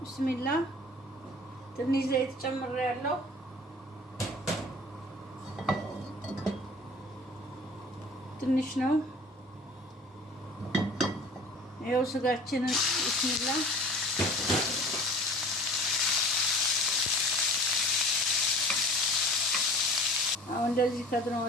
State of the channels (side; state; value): both; normal; correlation 0.44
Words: ትንሽ ዘይት ጨምሬያለሁ። ትንሽ ነው። ይኸው ስጋችንን ቢስሚላ አሁን እንደዚህ